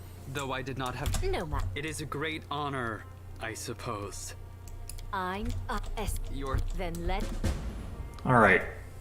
though I did not have. No, ma. It is a great honor, I suppose. I'm Your Then let... Alright,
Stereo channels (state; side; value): identical; both; correlation 1.00